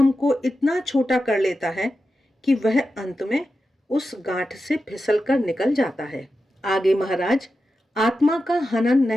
को इतना छोटा कर लेता है कि वह अंत में उस गांठ से फिसलकर निकल जाता है। आगे महाराज आत्मा का हनन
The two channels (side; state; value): both; normal; correlation 0.91